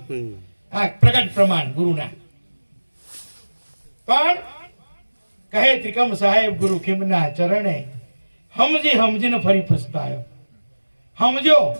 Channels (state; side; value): inverted; both; correlation -1.00